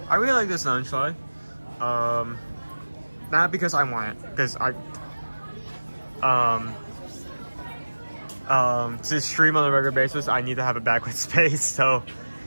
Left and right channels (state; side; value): inverted; both; correlation -1.00